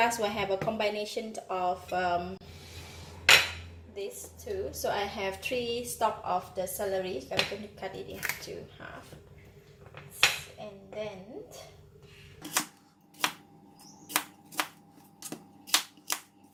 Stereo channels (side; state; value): both; identical; correlation 1.00